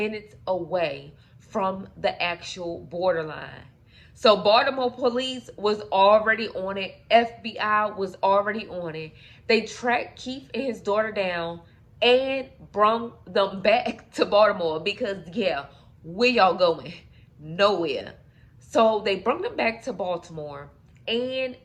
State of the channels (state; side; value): identical; both; correlation 1.00